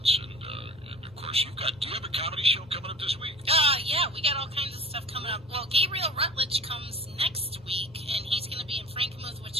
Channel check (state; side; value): normal; both; correlation 0.43